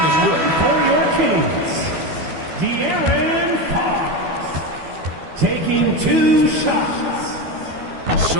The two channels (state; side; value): late; left; 12 ms